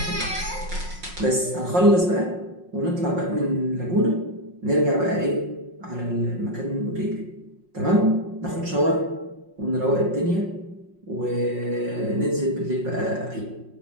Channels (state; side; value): late; left; 5.5 ms